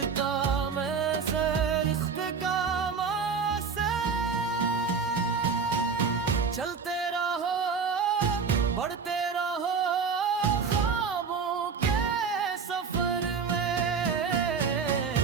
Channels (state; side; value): quieter; left; 5.6 dB